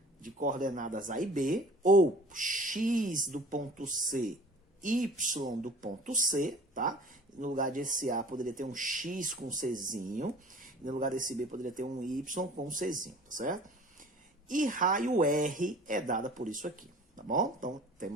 de coordenadas A e B, ou X do ponto C, Y do ponto C, tá? No lugar desse A poderia ter um X com Czinho, no lugar desse B poderia ter um Y com Czinho, tá certo? E raio R é dada por isso aqui, tá bom? Então,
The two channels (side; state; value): both; normal; correlation 0.46